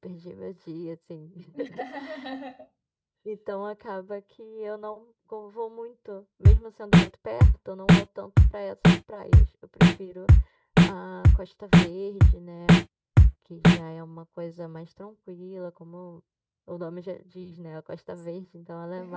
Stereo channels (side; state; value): both; identical; correlation 1.00